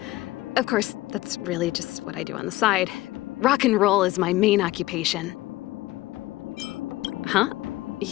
Of course, that's really just what I do on the side. Rock and roll is my main occupation. Huh?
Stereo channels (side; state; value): right; quieter; 18.1 dB